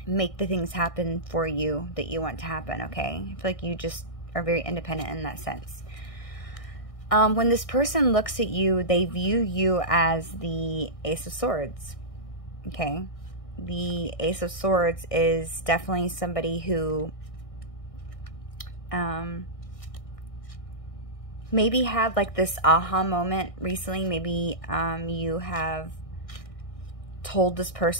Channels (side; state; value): right; late; 1.6 ms